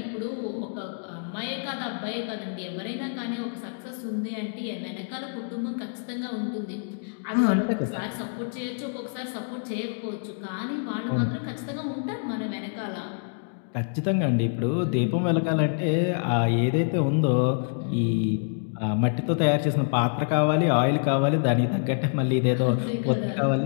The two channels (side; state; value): right; silent; digital silence